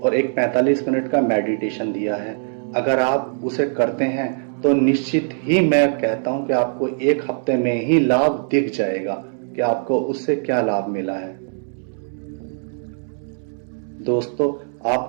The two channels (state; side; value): silent; left; 65 dB below the other